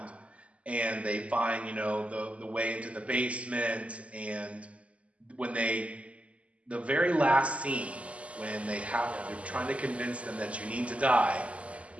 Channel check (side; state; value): left; late; 0.064 ms